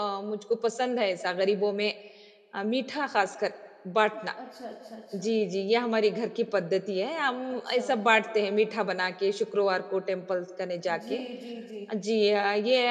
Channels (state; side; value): identical; both; correlation 1.00